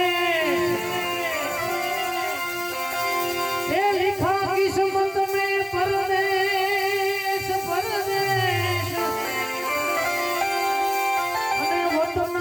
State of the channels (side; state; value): both; identical; correlation 1.00